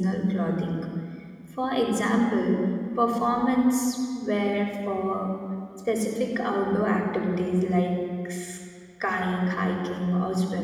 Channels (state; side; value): identical; both; correlation 1.00